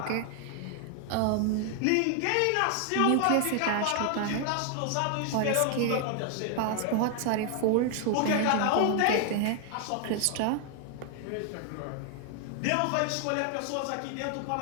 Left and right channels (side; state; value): both; different; correlation 0.00